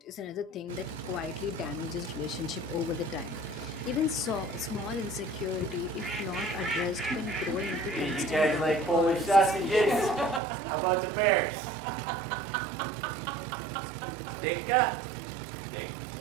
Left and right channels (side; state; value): left; drops out; at 10.4 s